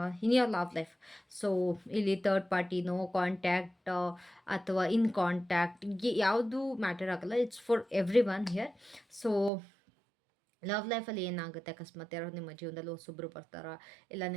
in your love life. So ಇಲ್ಲಿ ಥರ್ಡ್ ಪಾರ್ಟಿ, ನೋ ಕಾಂಟ್ಯಾಕ್ಟ್ ಅಥವಾ ಇನ್ ಕಾಂಟ್ಯಾಕ್ಟ್, ಯಾವುದು ಮ್ಯಾಟರ್ ಆಗಲ್ಲ. It's for every one here. So love ಲೈಫಲ್ಲಿ ಏನಾಗುತ್ತೆ, ಅಕಸ್ಮಾತ್ ಯಾರೋ ನಿಮ್ಮ ಜೀವನದಲ್ಲಿ ಹೊಸೊಬ್ಬರು ಬರ್ತಾರಾ, ಇಲ್ಲ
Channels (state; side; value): drops out; left; at 9.5 s